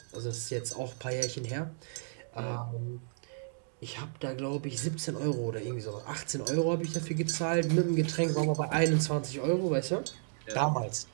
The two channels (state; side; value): silent; left; digital silence